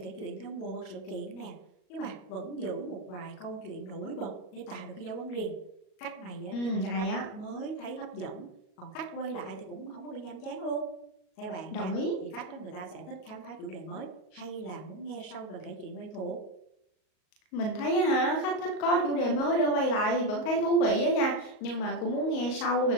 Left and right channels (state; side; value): late; right; 38 ms